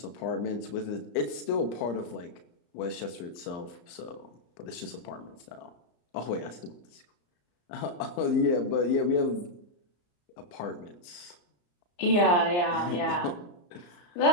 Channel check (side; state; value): right; late; 34 ms